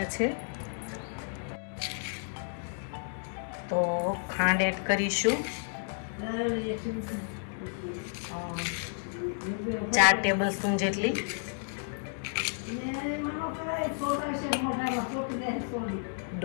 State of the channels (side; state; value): right; silent; digital silence